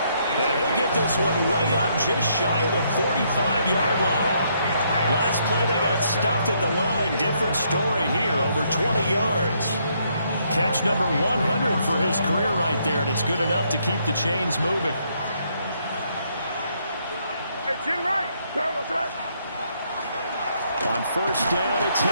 And he'll get this one way up just shy of the 45-yard line. Last play they got stuffed at the line. Different story here. Over 20 yards. Catch number 100 for his career right there, and it's good enough to keep the chains moving. On first down, it's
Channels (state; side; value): inverted; both; correlation -0.72